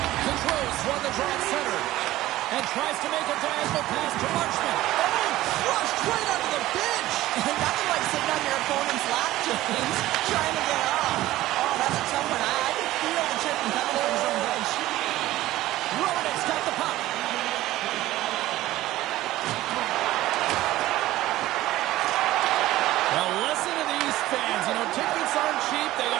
Controls run the draw at center. And tries to make a diagonal pass to Marchment. Oh, crushed right under the bench. Nothing like sitting on your opponent's lap, James, trying to get off. Oh, that's a tough one. I can feel the chip coming from his own bench. Romanek's got the puck. Now listen to these fans. You know, tickets aren't cheap. They got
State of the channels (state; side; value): quieter; left; 15.9 dB